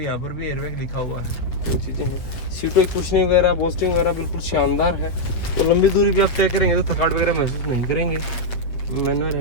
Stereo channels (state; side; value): late; right; 7.9 ms